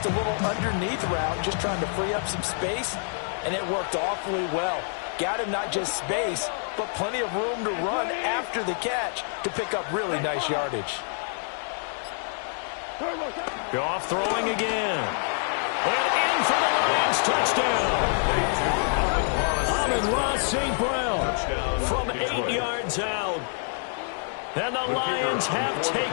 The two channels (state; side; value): silent; right; 60 dB below the other